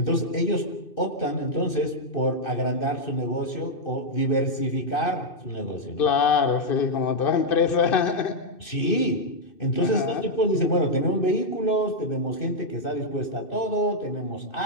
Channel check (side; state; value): right; late; 2.6 ms